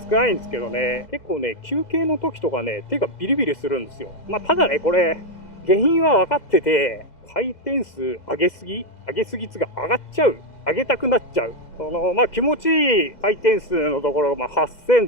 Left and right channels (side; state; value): right; late; 2.0 ms